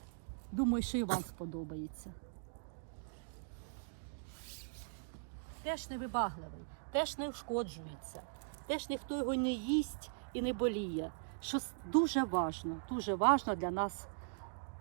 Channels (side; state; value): left; silent; digital silence